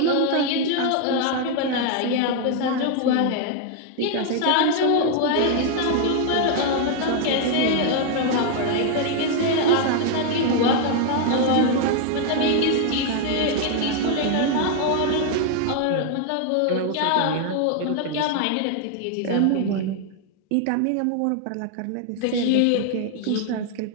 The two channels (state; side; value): different; both; correlation 0.00